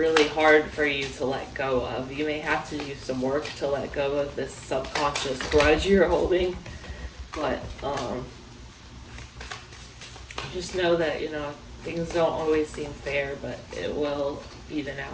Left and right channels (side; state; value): both; identical; correlation 1.00